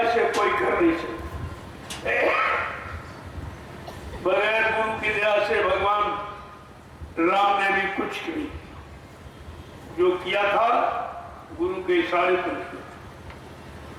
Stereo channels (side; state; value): both; identical; correlation 1.00